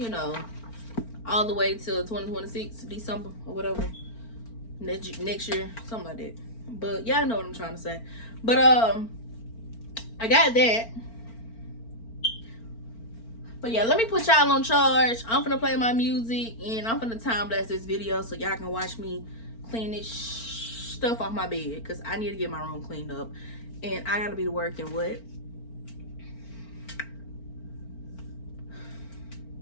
All the way till 2026, December or whatever. Next year, something like that. But y'all know what I'm trying to say. But I got that. But yeah, let me put y'all on charge. I'm finna play my music and I'm finna time blast this video so y'all can watch me clean this stuff off my bed because I need to get my room cleaned up. And I gotta be to work in what?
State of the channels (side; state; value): right; late; 4.4 ms